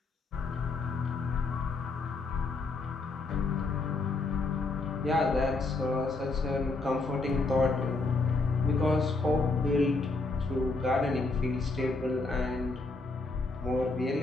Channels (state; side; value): quieter; right; 3.6 dB